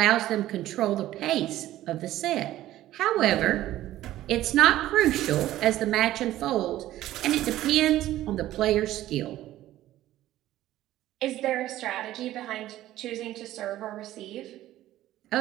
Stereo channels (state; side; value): quieter; left; 14.3 dB